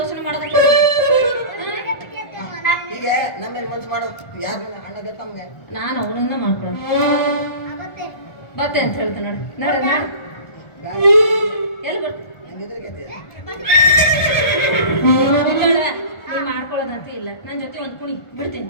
ಮಾಡೋದಕ್ಕೆ ಈಗ ನಮ್ಮೇಲೆ ಮನ್ಸು ಮಾಡೋ ಯಾರು ಅಣ್ಣಗೆ ತಮ್ಗೆ ನಾನು ಅವನನ್ನ ಮಾಡ್ಕೊಳ್ಳೋದು ಆಗುತ್ತೆ ಬತ್ತೆ ಅಂತ ಹೇಳ್ತಾನೆ ನೋಡು ನೋಡು ಎಲ್ಲಿ ಬರ್ತೀನಿ ಹೆಂಗಿದ್ರೆ ನೀ ಮಾಡ್ಕೊಳ್ಳೋದಂತೂ ಇಲ್ಲ ನನ್ನ ಜೊತೆ ಒಂದು ಕುಣಿ ಬಿಡ್ತೀನಿ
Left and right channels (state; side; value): late; right; 1.4 ms